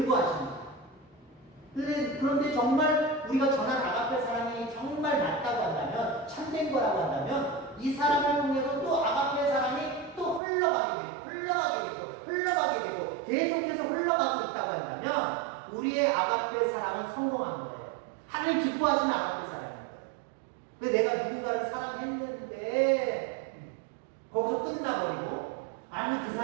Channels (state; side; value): drops out; left; at 10.4 s